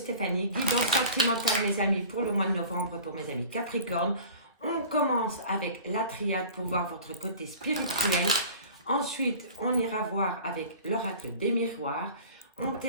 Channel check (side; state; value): both; inverted; correlation -0.40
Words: guidance sentimentale mes amis pour le mois de novembre pour mes amis Capricorne. On commence avec la triade pour voir votre côté spirituel. Ensuite, on ira voir avec l'oracle des miroirs. On